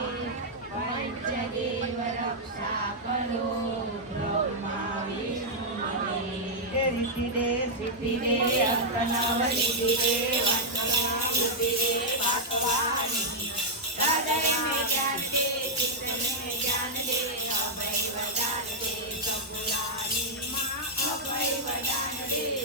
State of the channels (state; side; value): normal; both; correlation 0.00